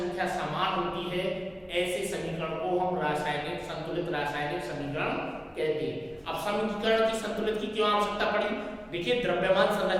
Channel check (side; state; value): both; identical; correlation 1.00